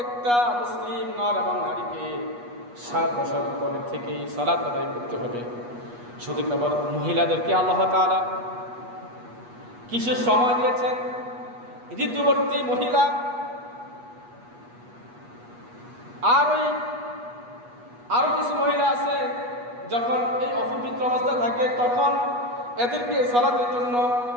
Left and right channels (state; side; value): late; left; 8.3 ms